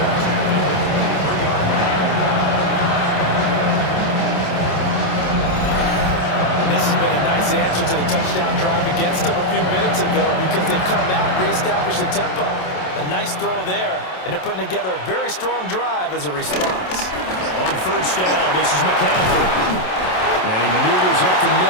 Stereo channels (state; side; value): late; right; 27 ms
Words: And this has been a nice answer to the touchdown drive against them a few minutes ago because they've come out and reestablished the tempo. A nice throw there, and they're putting together a very strong drive as a response. On 1st down, this is McCaffrey. And he maneuvers up the